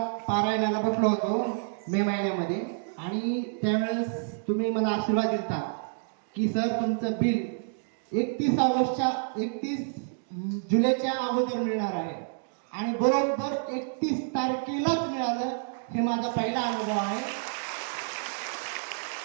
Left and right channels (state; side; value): silent; left; digital silence